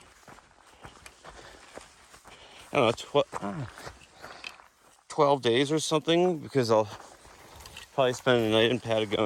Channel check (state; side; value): identical; both; correlation 1.00